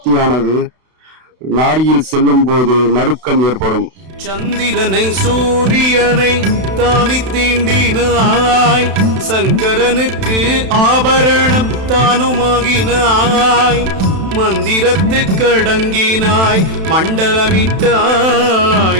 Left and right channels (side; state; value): left; late; 31 ms